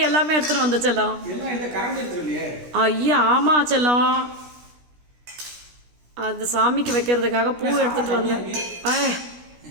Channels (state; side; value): late; left; 16 ms